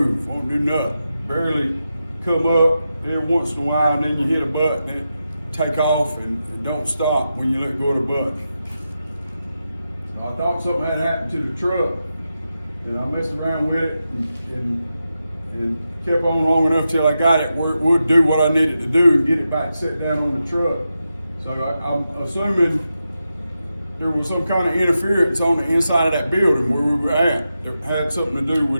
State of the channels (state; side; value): inverted; both; correlation -0.89